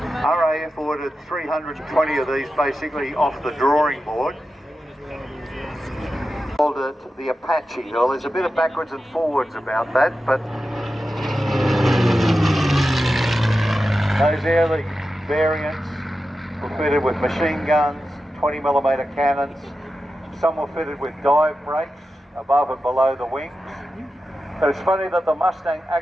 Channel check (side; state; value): both; normal; correlation 0.91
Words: ordered 320 of these basically off the drawing board. Called it the Apache. Well, there's a bit of backwards and forwards about that, but those early variants were fitted with machine guns, 20mm cannons. Some were fitted with dive brakes above and below the wings. But it's funny that the Mustang